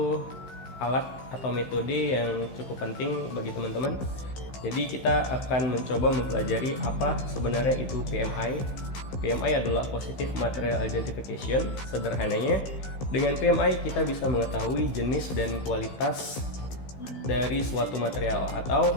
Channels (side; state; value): right; late; 15 ms